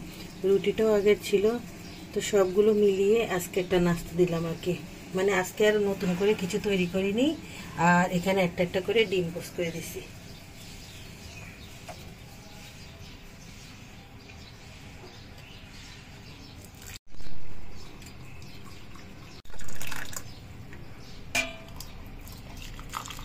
রুটিটাও আগের ছিল, তো সবগুলো মিলিয়ে আজকে একটা নাস্তা দিলাম আর কি। মানে আজকে আর নতুন করে কিছু তৈরি করিনি, আর এখানে একটা একটা করে ডিম পোস্ট করে দিছি।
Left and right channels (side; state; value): both; identical; correlation 1.00